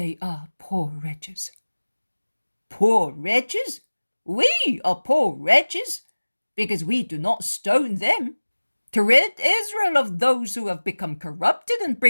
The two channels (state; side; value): inverted; both; correlation -1.00